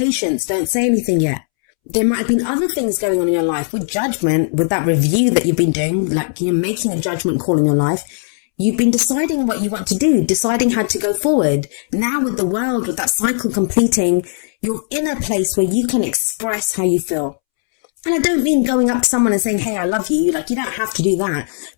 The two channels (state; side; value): silent; right; 68 dB below the other